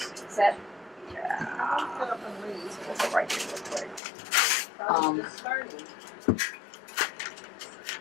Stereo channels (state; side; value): drops out; right; at 4.0 s